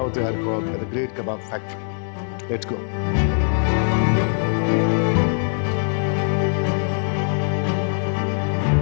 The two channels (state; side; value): silent; right; 64 dB below the other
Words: Arcot at the Great Kabab Factory. Let's go.